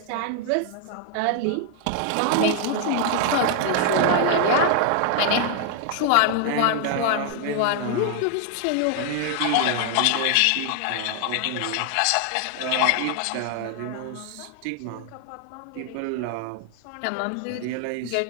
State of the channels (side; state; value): both; different; correlation 0.00